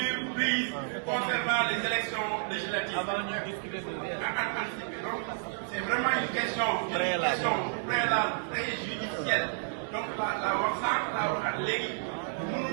prises concernant les élections législatives. Avant de discuter de anticiper. Donc, c'est vraiment une question préalable, préjudicielle. Donc, la wax sànq, la waxaat léegi.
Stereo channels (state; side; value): silent; left; digital silence